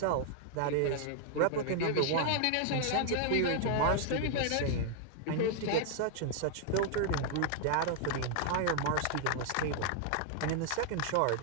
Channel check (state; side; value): different; both; correlation 0.00